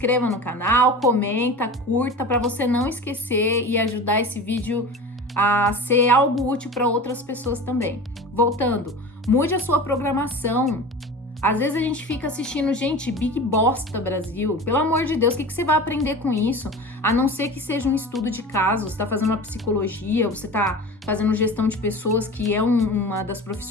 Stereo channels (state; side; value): normal; both; correlation 0.34